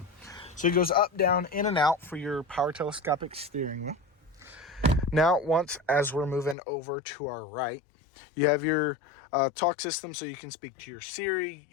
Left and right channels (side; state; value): right; drops out; at 6.6 s